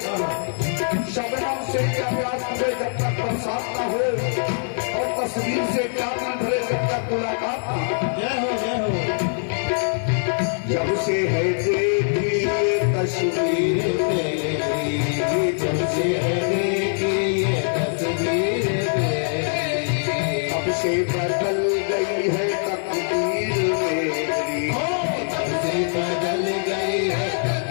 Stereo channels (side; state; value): right; silent; digital silence